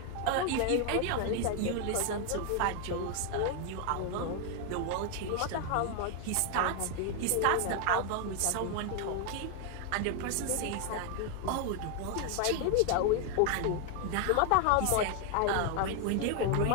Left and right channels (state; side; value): different; both; correlation 0.01